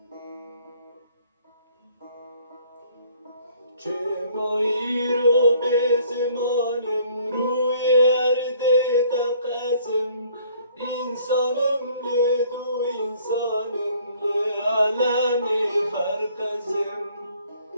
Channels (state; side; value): inverted; both; correlation -0.59